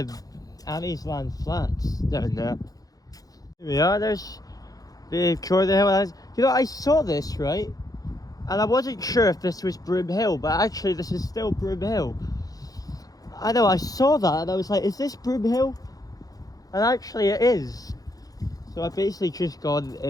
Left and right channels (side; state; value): right; late; 0.18 ms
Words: Annie's Land flats down there. Here we are, there's the Jordan Hill. You know, I saw this, right? And I wasn't sure if this was Broomhill, but actually this is still Broomhill. I know, I saw that and I was like, is this Broomhill? And actually it is. So I've basically just gone